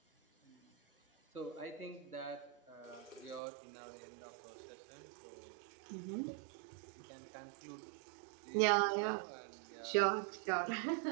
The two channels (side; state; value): left; drops out; at 3.4 s